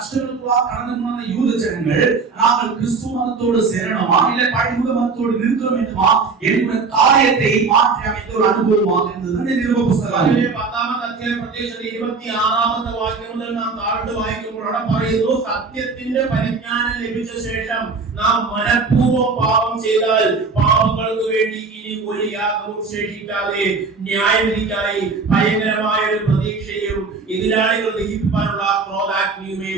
கடந்து போன யூத ஜனங்கள் நாங்கள் கிறிஸ்து மதத்தோடு சேரணுமா இல்ல பழைய மதத்தோடு நிற்க வேண்டுமா என்கிற காரியத்தை மாற்றி அமைத்த ஒரு அனுபவமாக இருந்தது இந்த நிருப புத்தகம். അതിലെ 10-ാമത്തെ അധ്യായം പ്രത്യേകിച്ച് 26-ാമത്തെ വാക്യം മുതൽ നാം താഴോട്ട് വായിക്കുമ്പോൾ അവിടെ പറയുന്നു, സത്യത്തിന്റെ പരിജ്ഞാനം ലഭിച്ച ശേഷം നാം മനഃപൂർവ്വം പാപം ചെയ്താൽ പാപങ്ങൾക്ക് വേണ്ടി ഇനി ഒരു യാഗവും ശേഷിക്കാതെ ന്യായവിധിക്കായി ഭയങ്കരമായ ഒരു പ്രതീക്ഷയും എതിരാളികൾ ദഹിപ്പിക്കാനുള്ള ക്രോധാഗ്നിയുമേ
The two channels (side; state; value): left; quieter; 4.5 dB